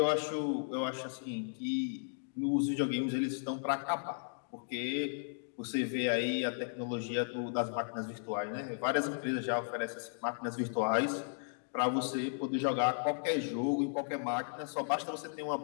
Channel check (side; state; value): right; silent; digital silence